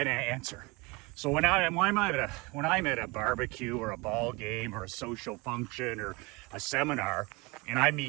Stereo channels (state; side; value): quieter; left; 24.9 dB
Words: answer. So when I'm at a barbecue or a ball game or a social function or a seminar, and I